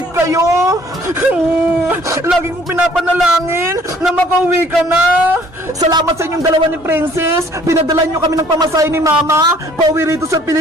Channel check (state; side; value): normal; both; correlation 0.57